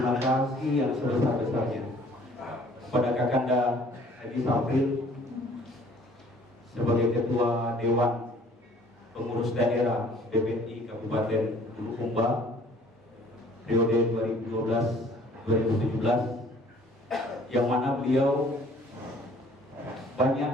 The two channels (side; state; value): both; normal; correlation 0.55